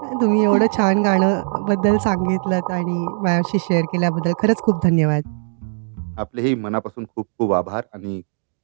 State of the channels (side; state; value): left; silent; digital silence